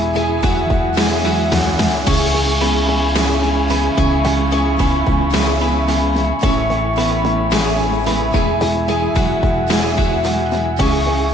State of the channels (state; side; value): normal; both; correlation 0.70